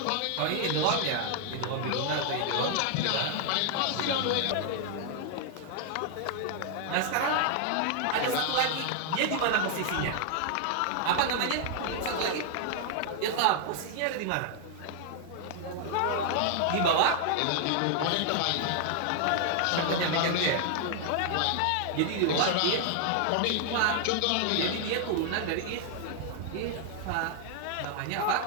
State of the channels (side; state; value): both; different; correlation 0.00